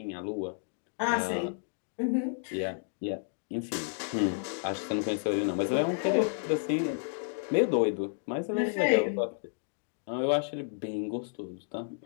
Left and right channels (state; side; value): silent; right; digital silence